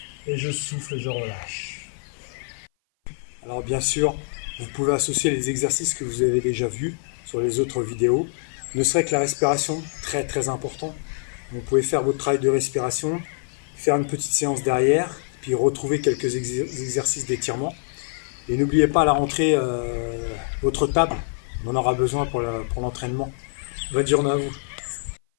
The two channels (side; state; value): right; silent; 57 dB below the other